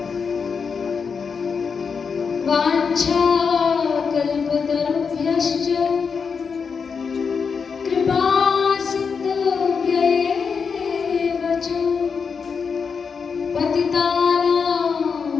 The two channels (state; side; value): quieter; right; 5.8 dB